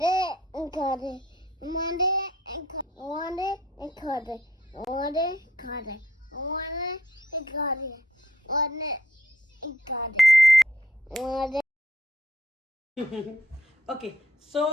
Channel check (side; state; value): both; normal; correlation 0.67